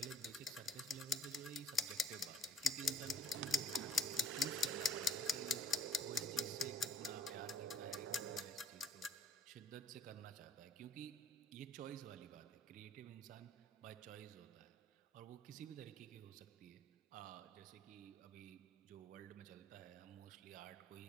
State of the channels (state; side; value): normal; both; correlation 0.60